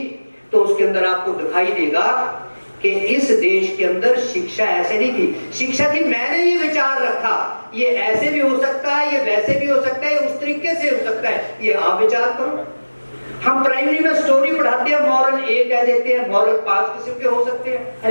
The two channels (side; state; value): both; inverted; correlation -1.00